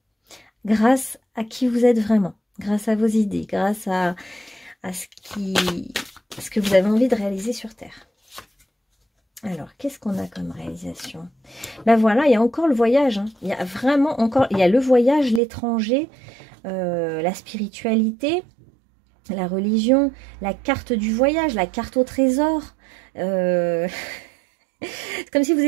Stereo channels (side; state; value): left; drops out; at 15.4 s